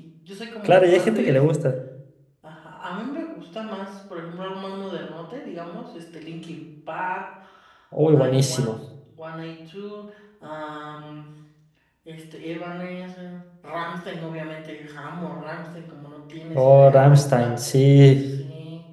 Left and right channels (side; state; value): both; identical; correlation 1.00